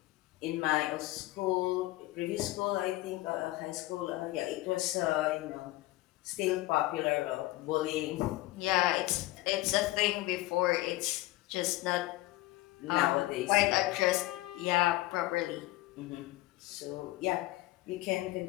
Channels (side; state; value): right; quieter; 18.1 dB